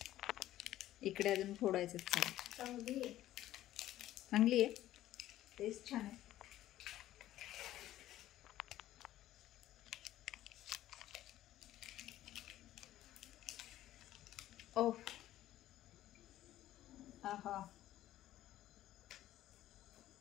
इकडे अजून फोडायचं. चांगली आहे, टेस्ट छान आहे. ओ आहा,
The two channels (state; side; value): quieter; right; 13.8 dB